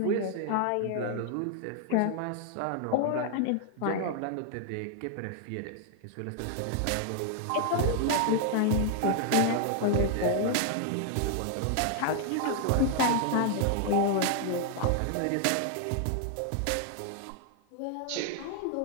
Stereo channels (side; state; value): both; different; correlation 0.00